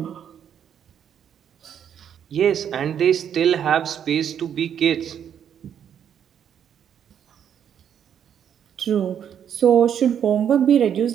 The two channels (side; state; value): left; quieter; 8.8 dB